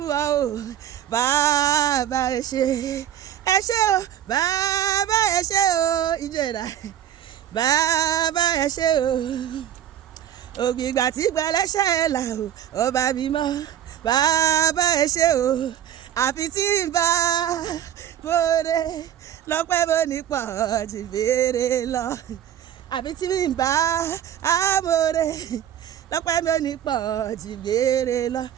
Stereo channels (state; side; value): quieter; left; 10.8 dB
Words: ọ o bàbá ẹ ṣé o bàbá ẹ ṣé o ìjọra bàbá ẹ ṣé o ògbìgbà tí gbẹlẹ́ṣẹ̀ là o ọba mímọ́ bàbá ẹ ṣé o àfi tí ń bá bóde lọ́pẹ́ bó ní pọ̀ jù béèrè lọ àfi tí ń bá amóore lọ́pẹ́ bó ní pọ̀ jù béèrè lọ